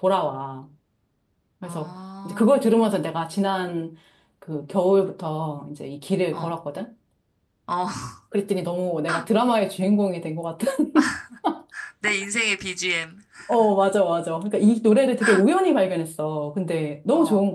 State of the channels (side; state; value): both; identical; correlation 1.00